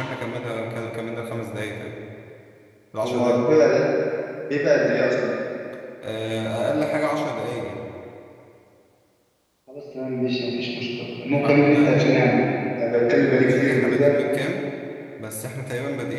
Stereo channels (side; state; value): both; identical; correlation 1.00